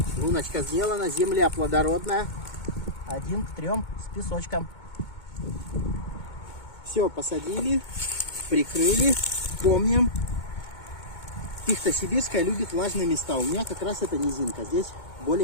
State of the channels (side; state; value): right; late; 2.2 ms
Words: Луночка сделана, земля плодородная. 1 к 3 с песочком. Все, посадили, прикрыли. Помним, пихта сибирская любит влажные места. У меня как раз это низинка. Здесь